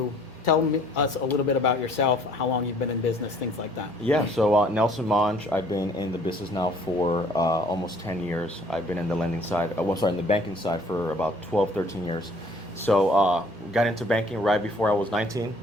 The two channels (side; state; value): both; normal; correlation 0.57